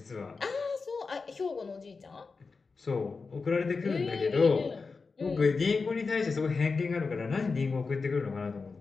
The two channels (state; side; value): quieter; right; 4.5 dB